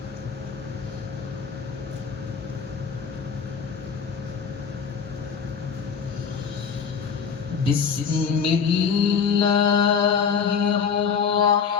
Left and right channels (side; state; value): right; quieter; 6.4 dB